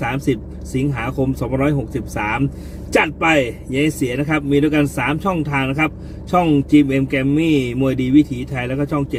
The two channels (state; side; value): identical; both; correlation 1.00